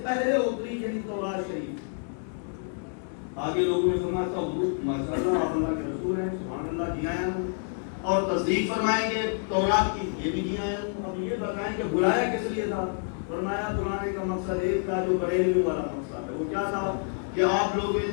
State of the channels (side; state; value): right; silent; 59 dB below the other